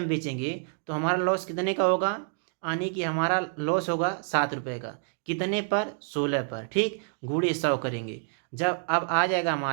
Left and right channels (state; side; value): silent; left; 58 dB below the other